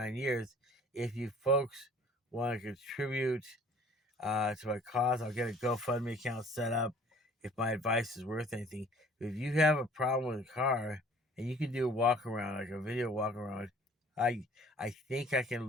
years. If you folks want to contribute to my cause, I'll get a GoFundMe account set up if my advice is worth anything. If you have a problem with a car and you can do a walk around, like a video walk around, I think I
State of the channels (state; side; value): normal; both; correlation 0.52